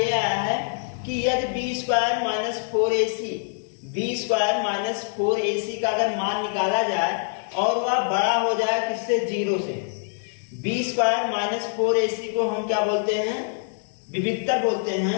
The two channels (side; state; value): right; silent; digital silence